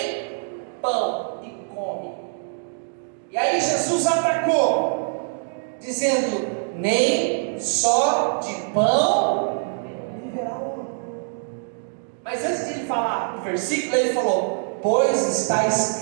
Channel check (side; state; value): left; silent; digital silence